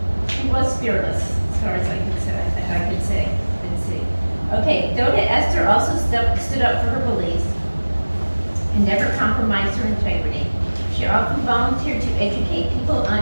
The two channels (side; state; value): both; inverted; correlation -1.00